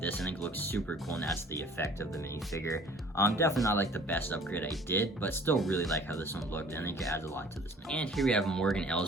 this, I think it looks super cool, and that's the effect of the minifigure. Definitely not the best upgrade I did, but still really like how this one looked, and I think it adds a lot to this minifigure. And here we have Morgan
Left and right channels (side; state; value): both; normal; correlation 0.51